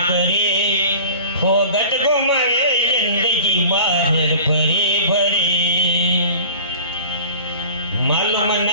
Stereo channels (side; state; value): both; inverted; correlation -0.40